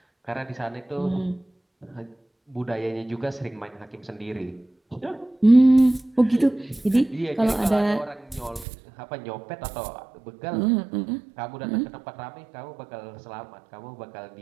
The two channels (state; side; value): drops out; left; at 8.7 s